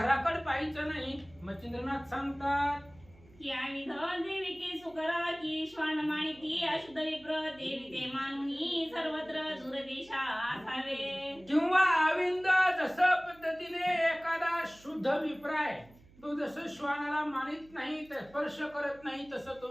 पाहायचं नाही. मच्छिंद्रनाथ सांगतात, की आविध देवी की सुकरा की श्वान माणिकी अशुद्ध विप्र देवी ते मानुनी सर्वत्र दूरदेशा असावे. किंवा आविंद जसं पद्धतीने एखादा शुद्ध विप्राय, तो जसं श्वानाला मानित नाही, स्पर्श करत नाही, तसं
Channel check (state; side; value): noise; right; hum, 25 dB below the sound